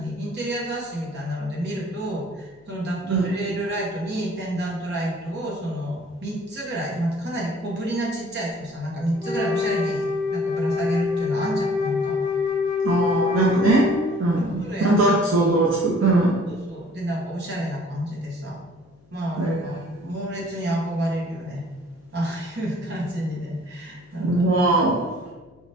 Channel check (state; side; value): noise; left; hum, 29 dB below the sound